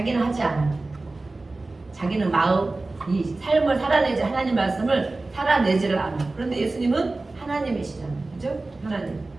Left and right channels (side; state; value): left; quieter; 3.2 dB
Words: 하지 않아. 자기는 마음 이 삶을 살아내지 하나님 말씀을 살아내지를 않아. 그런데 예수님은 하나님이시잖아요. 그죠? 하나님.